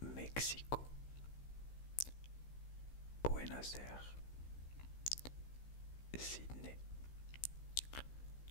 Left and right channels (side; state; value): right; late; 15 ms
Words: Mexico. Buenos Aires. Sydney.